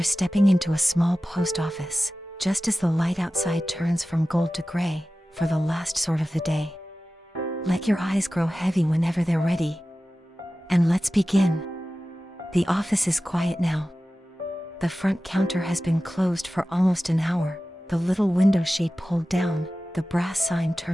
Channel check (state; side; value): normal; both; correlation 0.95